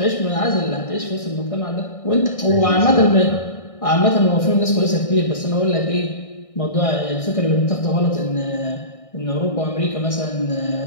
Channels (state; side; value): late; right; 1.6 ms